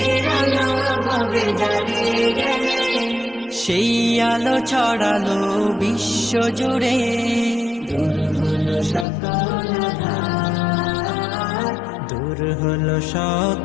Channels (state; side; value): drops out; right; at 9.1 s